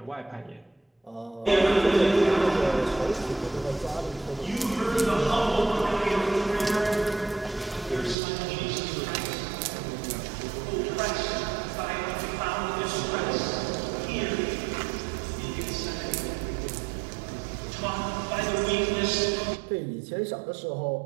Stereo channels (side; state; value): left; drops out; at 8.2 s